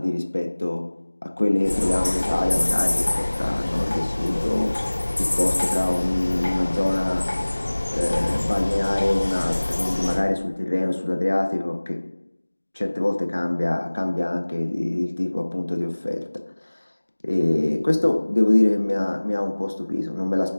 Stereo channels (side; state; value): both; inverted; correlation -1.00